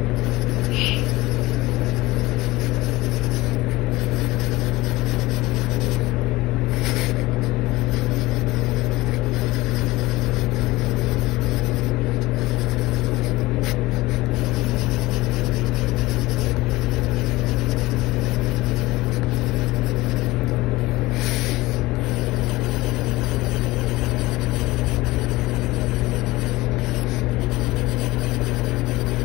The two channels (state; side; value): quieter; right; 19.8 dB